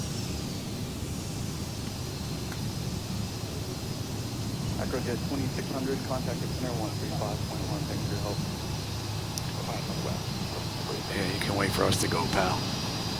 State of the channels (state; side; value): identical; both; correlation 1.00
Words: Acrojet 2600, contact center 135.1, thanks for your help. Yeah, you can wait for us to go, pal.